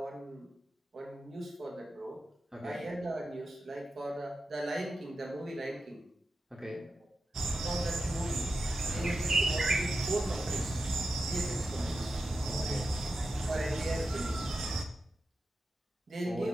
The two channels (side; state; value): both; normal; correlation 0.91